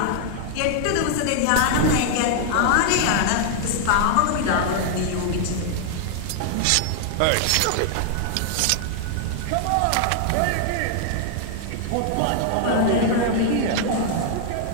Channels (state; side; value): different; both; correlation 0.00